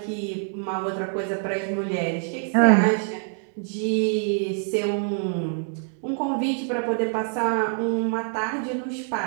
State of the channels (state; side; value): silent; left; 62 dB below the other